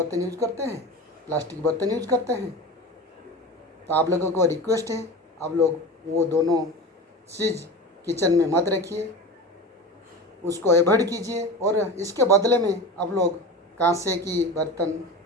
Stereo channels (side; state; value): both; normal; correlation 0.30